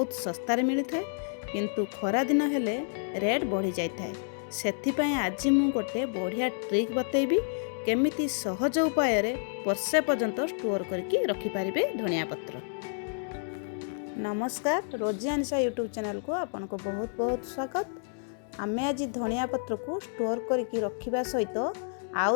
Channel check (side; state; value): right; silent; digital silence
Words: सस्तार मिलता है किंतु खरा दिन हेले रेट बढ़ी जाए। से आज मु गोटे बढ़िया ट्रिक बतेबी केमिति सहज उपाय वर्षे पर्यंत स्टोर करके रखिपारे धनिया पत्र। नमस्कार, रोजी अनिशा यूट्यूब चैनल को आपन को बहुत बहुत स्वागत। आमे आज धनिया पत्र को स्टोर करके रखिबा सहित आउ